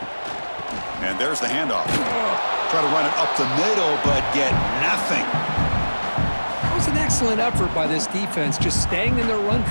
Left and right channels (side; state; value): both; inverted; correlation -1.00